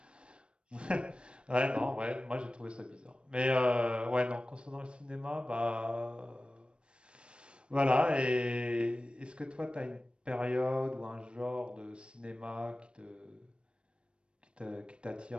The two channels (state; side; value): late; left; 0.057 ms